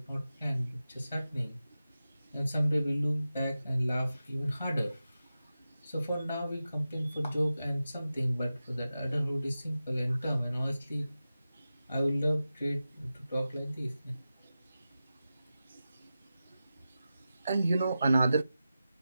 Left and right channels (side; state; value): both; inverted; correlation -0.93